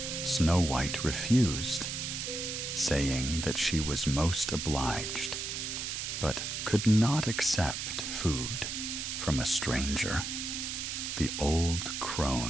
Snow White refused, saying that she was most obliged, but could not accept food from a stranger. The old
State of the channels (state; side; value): noise; right; hiss, 4 dB below the sound